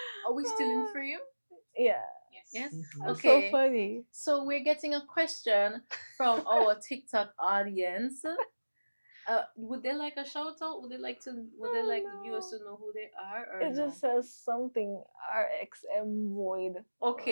Are we still in frame? Yeah, Yes. that's Okay. so funny. So we're getting a question from our TikTok audience. Would they like a shout out? Would they like the viewers to know who they are, or It no? just says something RXM void.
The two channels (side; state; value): both; inverted; correlation -1.00